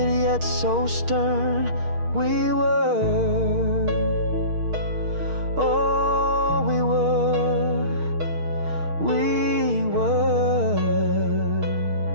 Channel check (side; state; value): left; late; 6.5 ms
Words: yet so stern? We were, oh we were, we were.